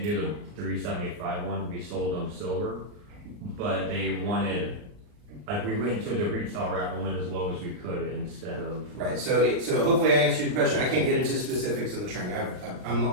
one, we sold them silver, but they wanted, like, we went to the retail route and went as low as we could instead of. Right, so hopefully I answered your question. I can't get into specifics in the training, I'm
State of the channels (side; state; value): left; late; 39 ms